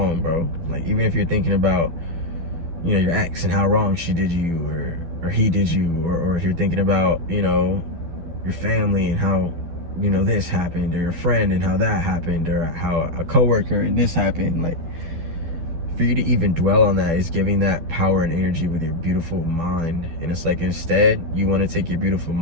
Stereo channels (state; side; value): late; left; 12 ms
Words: bro. Like, even if you're thinking about, you know, your ex and how wrong she did you, or he did you, or if you're thinking about, you know, your family and how, you know, this happened, or your friend and how that happened, or how a coworker and this happened. Like, for you to even dwell on that is giving that power and energy with your beautiful mind. And it's like, instead, you want to take your beautiful